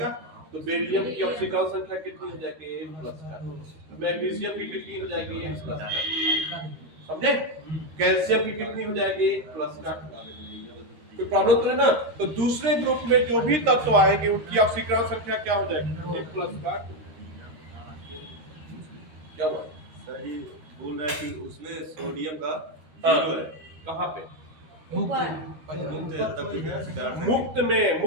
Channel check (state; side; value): late; left; 13 ms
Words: तो बेरिलियम की ऑक्सीकरण संख्या कितनी हो जाएगी प्लस का। मैग्नीशियम की कितनी हो जाएगी प्लस का, समझे? कैल्शियम की कितनी हो जाएगी प्लस का। कोई प्रॉब्लम तो है ना? तो दूसरे ग्रुप में जो भी तत्व आएंगे उनकी ऑक्सीकरण संख्या क्या हो जाएगी प्लस का। क्या हुआ सर? ये बोल रहा है कि उसमें सोडियम का जीरो है। कहाँ पे? मुक्त में,